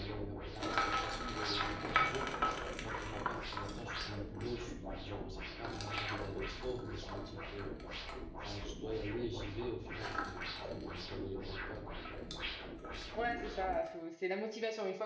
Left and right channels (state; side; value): identical; both; correlation 1.00